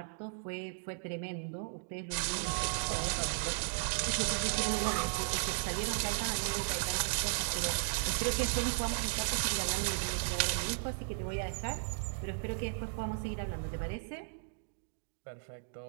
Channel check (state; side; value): silent; left; digital silence